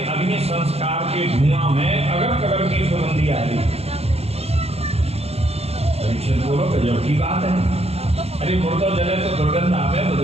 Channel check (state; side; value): late; left; 0.30 ms